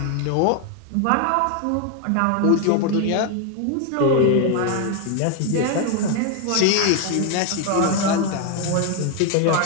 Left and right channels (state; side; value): different; both; correlation 0.01